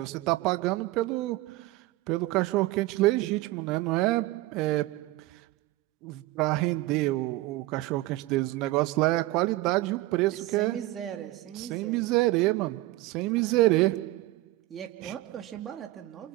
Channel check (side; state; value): left; quieter; 18.1 dB